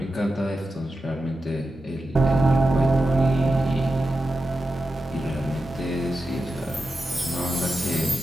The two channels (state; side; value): normal; both; correlation 0.90